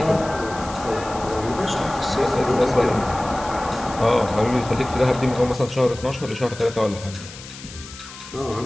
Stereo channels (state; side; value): noise; left; hiss, 15 dB below the sound